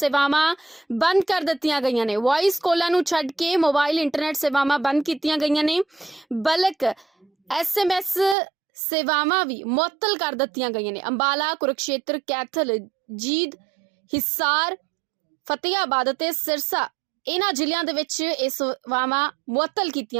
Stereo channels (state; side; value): drops out; left; at 8.3 s